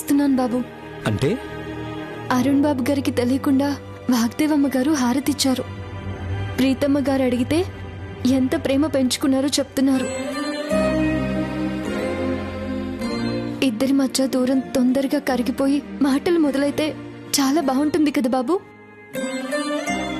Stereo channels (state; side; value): identical; both; correlation 1.00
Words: బాబు. అంటే అరుణ్ బాబు గారికి తెలియకుండా వాగ్దేవమ్మ గారు హారతిచ్చారు. ప్రీతమ్మ గారు అడిగితే ఎంత ప్రేమ పెంచుకున్నారో చెప్తున్నారు. ఇద్దరి మధ్య దూరం తొందరగా కరిగిపోయి మాటలు మొదలైతే చాలా బాగుంటుంది కదా బాబు.